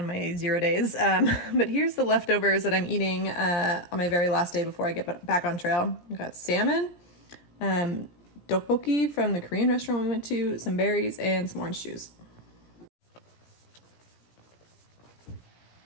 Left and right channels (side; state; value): right; late; 17 ms